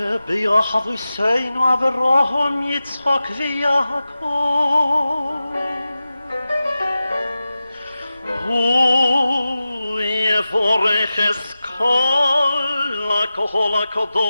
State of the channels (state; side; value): inverted; both; correlation -0.94